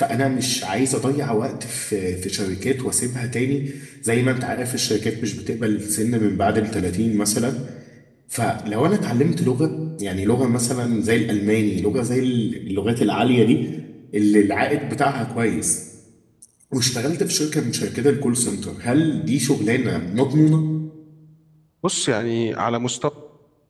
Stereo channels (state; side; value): identical; both; correlation 1.00